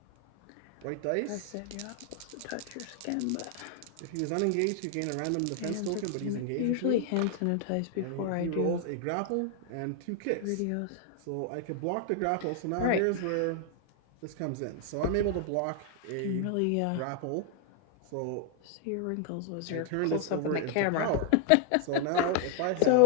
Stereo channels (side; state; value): both; different; correlation 0.00